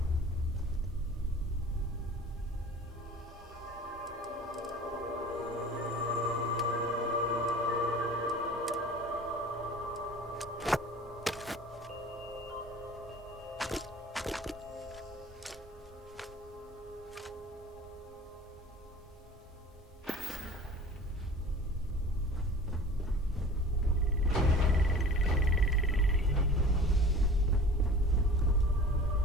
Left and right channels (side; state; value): both; normal; correlation 0.43